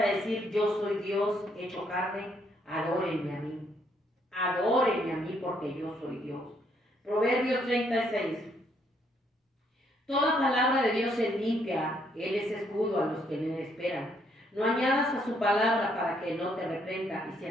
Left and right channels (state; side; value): normal; both; correlation 0.71